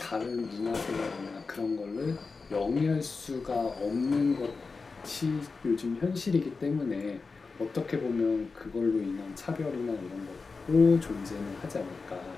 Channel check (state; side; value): quieter; right; 4.4 dB